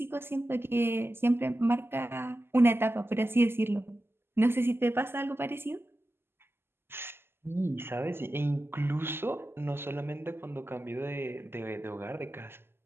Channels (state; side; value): late; left; 0.11 ms